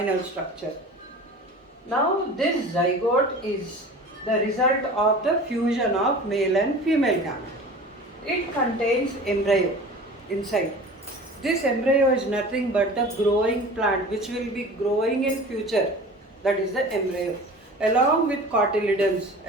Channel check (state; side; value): normal; both; correlation 0.39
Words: structure. Now this zygote is the result of the fusion of male and female gamete. It contains embryo inside. This embryo is nothing but the growing plant which will be growing in future. That is the embryo. Along with cotyledons,